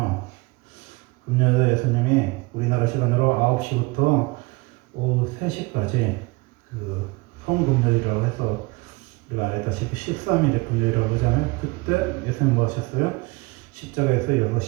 금년에 예수님이 우리나라 시간으로 9시부터 오후 3시까지 그 성금요일이라고 해서 우리가 알다시피 13일의 금요일이라고 하잖아요. 그때 예수님 뭐 하셨어요? 십자가에서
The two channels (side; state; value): left; quieter; 24.8 dB